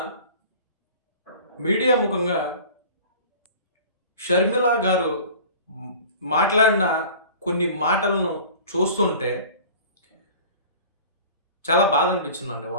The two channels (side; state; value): both; inverted; correlation -0.42